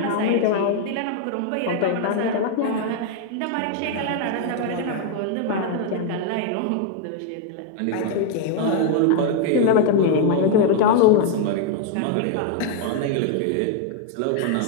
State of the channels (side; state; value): both; different; correlation 0.00